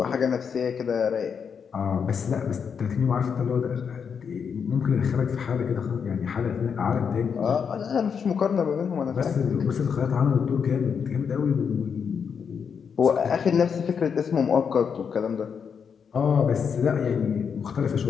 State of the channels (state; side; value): quieter; right; 6.7 dB